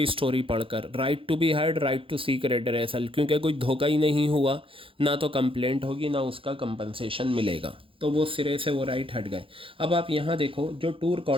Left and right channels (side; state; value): left; late; 0.26 ms